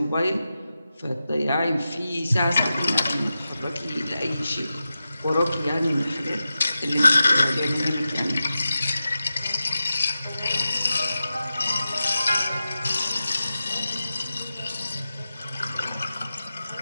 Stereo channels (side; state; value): both; inverted; correlation -0.92